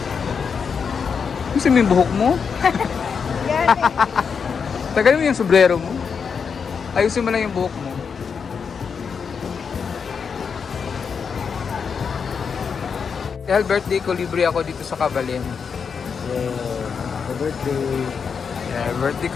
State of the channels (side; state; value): right; quieter; 6.1 dB